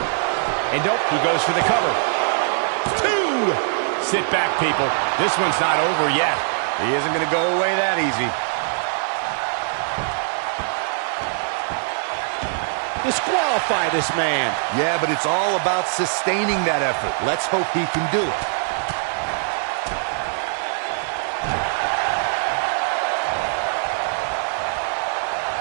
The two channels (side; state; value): left; silent; digital silence